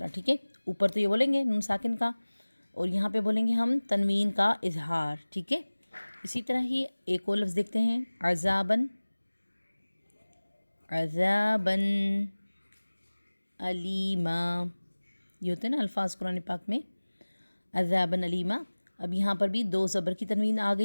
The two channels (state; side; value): inverted; both; correlation -1.00